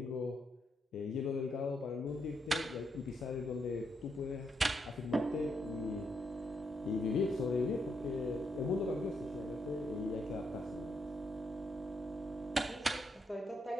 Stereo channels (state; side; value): normal; both; correlation 0.79